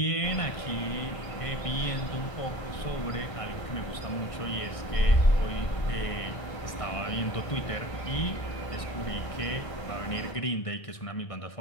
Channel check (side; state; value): right; late; 1.6 ms